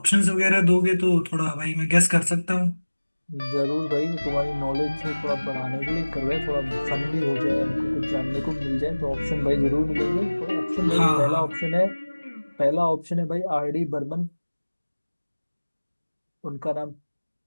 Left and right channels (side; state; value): both; inverted; correlation -1.00